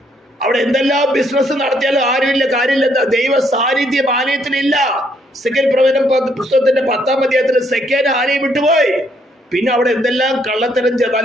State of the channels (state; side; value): normal; both; correlation 0.70